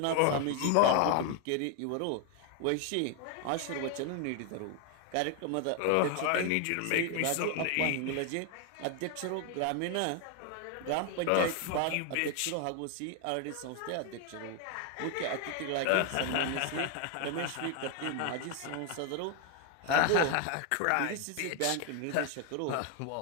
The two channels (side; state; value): both; different; correlation 0.00